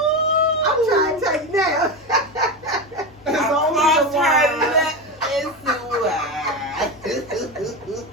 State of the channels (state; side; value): normal; both; correlation 0.18